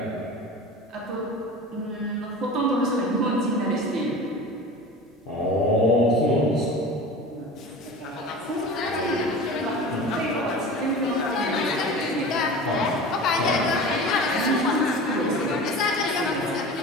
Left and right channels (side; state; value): both; normal; correlation 0.35